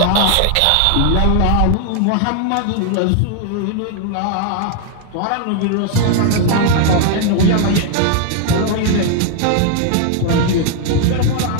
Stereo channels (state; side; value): different; both; correlation 0.00